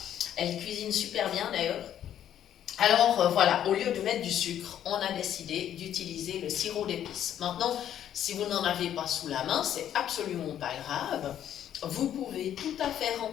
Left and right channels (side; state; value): right; quieter; 10.5 dB